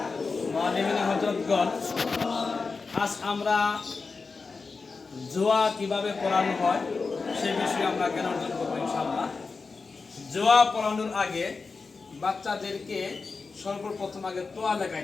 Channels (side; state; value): right; quieter; 4.4 dB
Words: মুআল্লিমিন হযরতগণ, আজ আমরা জুয়া কিভাবে পড়ানো হয় সেই বিষয়ে আমরা জ্ঞান অর্জন করবো ইনশাআল্লাহ। জুয়া পড়ানোর আগে বাচ্চাদেরকে সর্বপ্রথম আগে তোয়া